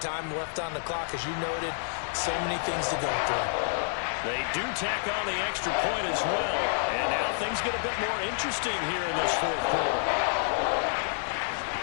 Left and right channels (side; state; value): right; silent; 59 dB below the other